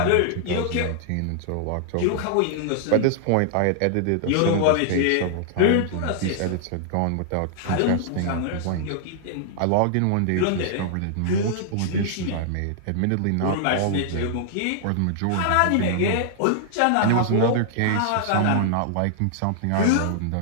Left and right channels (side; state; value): both; different; correlation -0.01